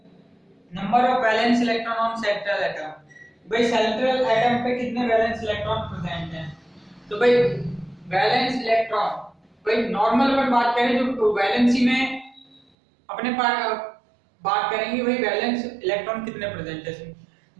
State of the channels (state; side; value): drops out; left; at 12.6 s